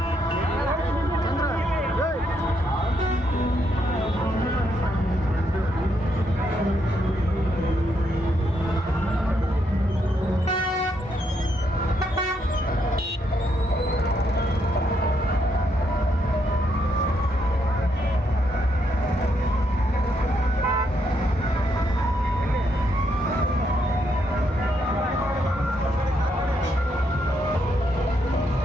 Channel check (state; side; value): normal; both; correlation 0.77